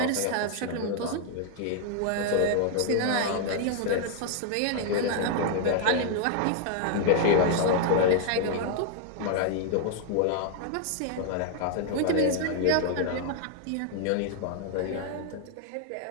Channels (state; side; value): different; both; correlation 0.00